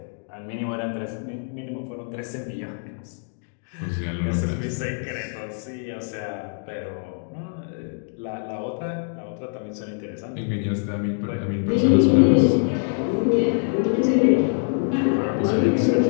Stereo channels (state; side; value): silent; right; 62 dB below the other